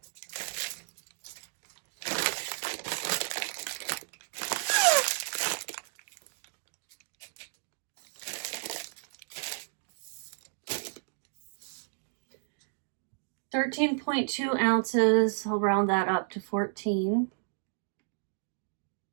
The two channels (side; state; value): left; silent; digital silence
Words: $13.2 ounces. I'll round that up to 14.